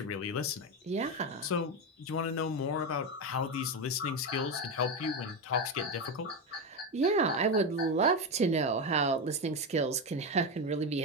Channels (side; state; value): both; normal; correlation 0.13